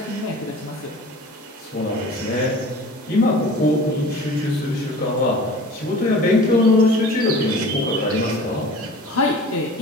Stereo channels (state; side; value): normal; both; correlation 0.42